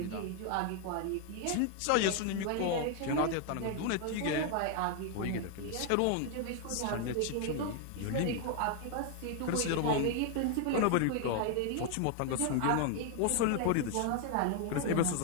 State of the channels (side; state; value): both; different; correlation 0.00